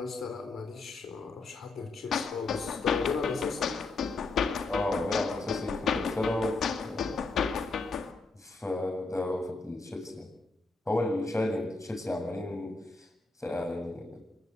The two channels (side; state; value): right; quieter; 3.6 dB